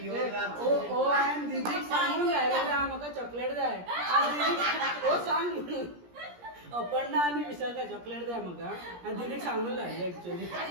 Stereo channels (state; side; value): late; left; 17 ms